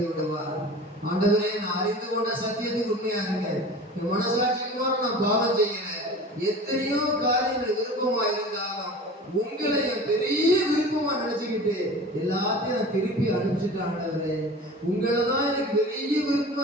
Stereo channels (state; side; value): normal; both; correlation 0.38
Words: விடுவார். ஆண்டவரே, நான் அறிந்து கொண்ட சத்தியத்துக்கு உண்மையா இருக்கேன், என் மனசாட்சிக்கு நான் பாவம் செய்யல, எத்தனையோ காரியங்கள் விருப்பமா இருந்தாலும் உங்களை என் பெரிய விருப்பமா நினைச்சுக்கிட்டு எல்லாத்தையும் நான் திருப்பி அனுப்பிச்சுட்டேன். ஆண்டவரே, உங்களை தான் எனக்கு பெரிய